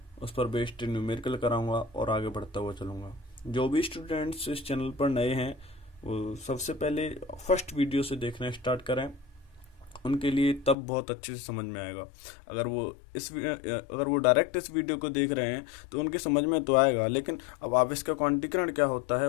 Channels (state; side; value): drops out; right; at 10.8 s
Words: उस पर बेस्ड न्यूमेरिकल कराऊंगा और आगे बढ़ता हुआ चलूंगा। जो भी स्टूडेंट्स इस चैनल पर नए हैं वो सबसे पहले फर्स्ट वीडियो से देखना स्टार्ट करें, उनके लिए तब बहुत अच्छे से समझ में आएगा। अगर वो डायरेक्ट इस वीडियो को देख रहे हैं तो उनकी समझ में तो आएगा, लेकिन अब आवेश का क्वांटीकरण क्या होता है